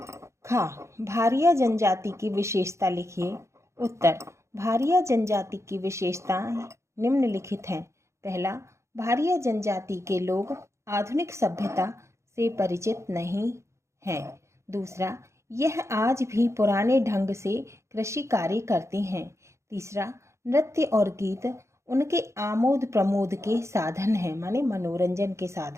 खा, भारिया जनजाति की विशेषता लिखिए। उत्तर, भारिया जनजाति की विशेषताएं निम्नलिखित हैं। पहला, भारिया जनजाति के लोग आधुनिक सभ्यता से परिचित नहीं हैं। दूसरा, यह आज भी पुराने ढंग से कृषि कार्य करते हैं। तीसरा, नृत्य और गीत उनके आमोद प्रमोद के साधन हैं, माने मनोरंजन के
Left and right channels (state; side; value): late; left; 0.14 ms